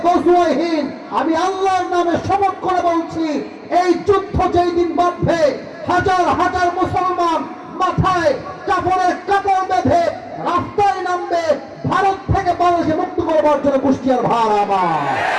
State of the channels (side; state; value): both; identical; correlation 1.00